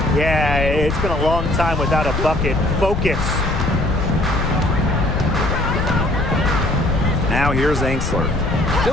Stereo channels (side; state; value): left; noise; rumble, 2 dB below the sound